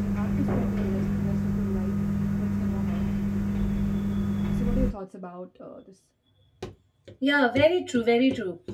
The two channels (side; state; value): both; identical; correlation 1.00